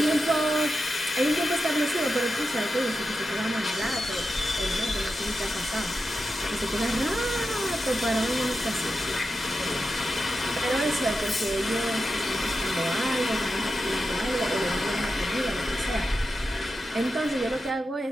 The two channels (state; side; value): normal; both; correlation 0.89